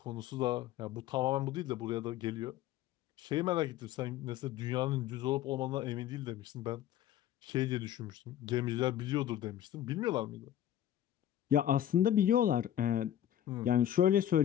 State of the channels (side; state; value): right; quieter; 11.5 dB